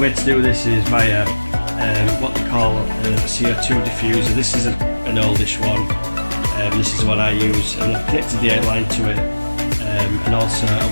to do this is via what they call a CO2 diffuser. This is an oldish one. This is what I use, and I've connected the airline to it, and also a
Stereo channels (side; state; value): both; inverted; correlation -1.00